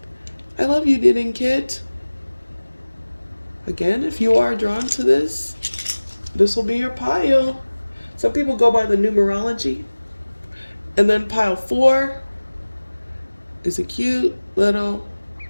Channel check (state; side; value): inverted; both; correlation -1.00